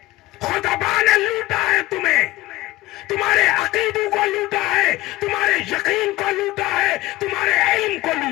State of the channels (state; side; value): quieter; right; 18.2 dB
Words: خطبہ نے لوٹا ہے تمہیں، تمہارے عقیدوں کو لوٹا ہے، تمہارے یقین کو لوٹا ہے، تمہارے علم کو